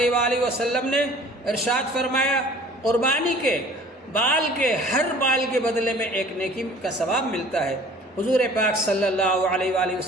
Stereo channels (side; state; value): both; normal; correlation 0.49